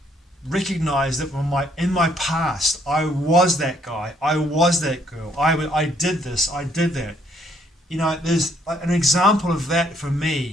recognized that in my past I was that guy, I was that girl, I did this, I did that. You know, there's an example of that for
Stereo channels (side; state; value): both; normal; correlation 0.67